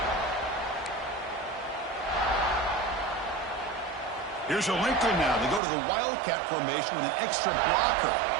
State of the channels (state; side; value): drops out; left; at 5.6 s